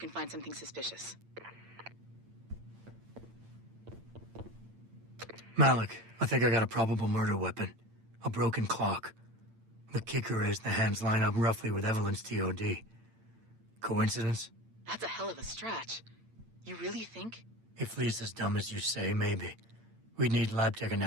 find something suspicious. Malik, I think I got a probable murder weapon. A broken clock. The kicker is the hands line up roughly with Evelyn's TOD. Coincidence? That's a hell of a stretch. You really think? If Lee's as dumb as you say, maybe. We'd need lab tech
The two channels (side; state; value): left; late; 8.8 ms